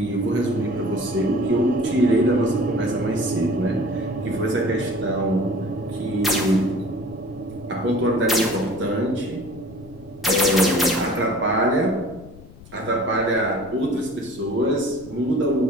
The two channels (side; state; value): left; noise; rumble, 20 dB below the sound